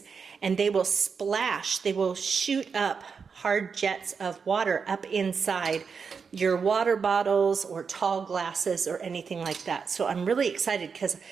and they will splash, they will shoot up hard jets of water up inside your water bottles or tall glasses or anything like that. So I'm really excited because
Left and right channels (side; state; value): left; quieter; 5.7 dB